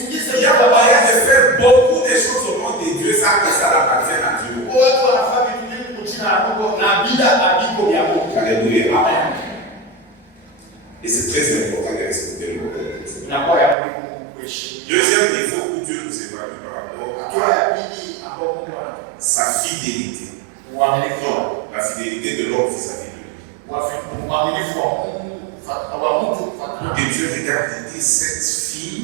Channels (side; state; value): left; drops out; at 13.8 s